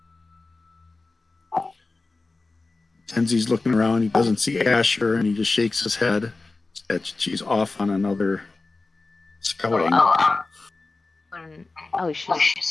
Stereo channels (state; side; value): quieter; right; 3.5 dB